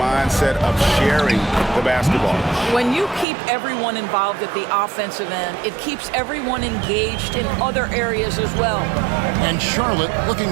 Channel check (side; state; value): left; drops out; at 3.2 s